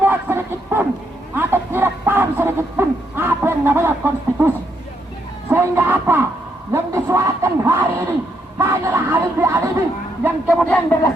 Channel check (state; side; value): normal; both; correlation 0.76